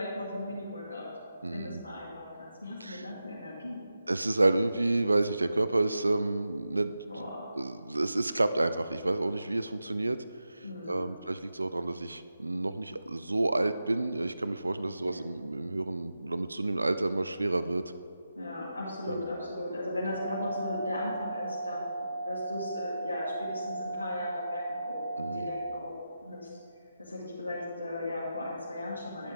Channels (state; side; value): inverted; both; correlation -0.90